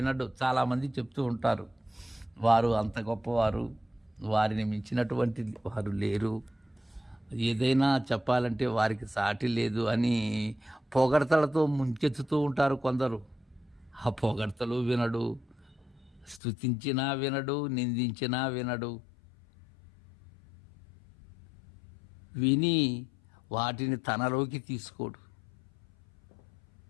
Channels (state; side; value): drops out; right; at 16.4 s